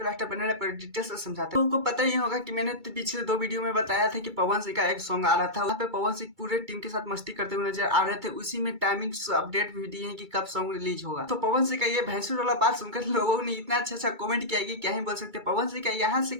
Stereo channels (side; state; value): left; late; 2.3 ms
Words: लास्ट बने पर डिटेल से समझाते हैं। लोगों को पता ही होगा कि मैंने पिछले 2 वीडियो में बताया था कि पवन सिंह का एक सॉन्ग आ रहा था, वहाँ पे पवन सिंह पूरे टीम के साथ मस्ती करते हुए नजर आ रहे थे। उसी में टाइमिंग अपडेट भी दिए हैं कि कब सॉन्ग रिलीज होगा। तो पवन सिंह का ये भैंसुर वाला बात सुनकर लोगों ने इतना अच्छा कमेंट किया कि क्या ही बोल सकते। पवन सिंह का यहाँ से